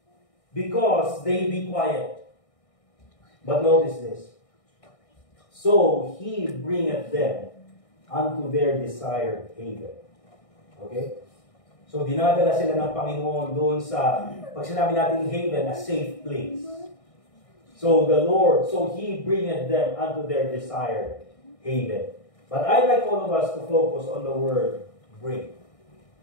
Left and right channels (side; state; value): right; late; 1.6 ms